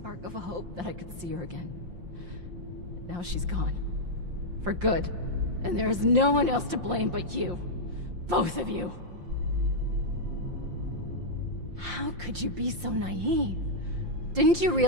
of a hope that I could see her again. But now she's gone. For good. And there is no one else to blame but you. Both of you. How could you be so naive? Didn't you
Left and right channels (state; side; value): late; left; 5.7 ms